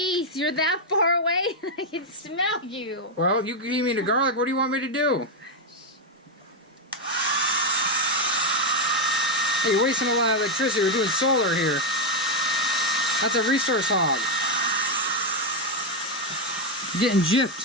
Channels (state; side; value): normal; both; correlation 0.02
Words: you're that far away. I can smell you. Well, you gave me the garlic. What do you want me to do? Hey, you're wasting a lot of electricity. We're doing solar here. That's a resource hog. Getting